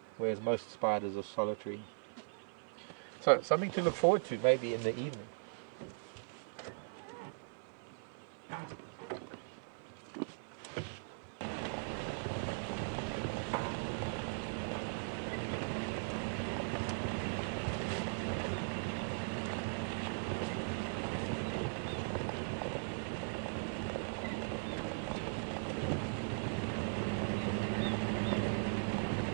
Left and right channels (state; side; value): silent; left; 52 dB below the other